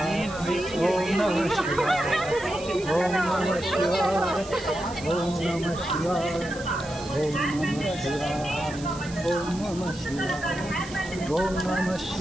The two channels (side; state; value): right; noise; hiss, 16 dB below the sound